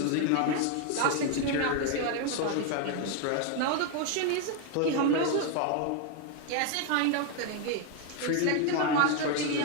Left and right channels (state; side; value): different; both; correlation 0.01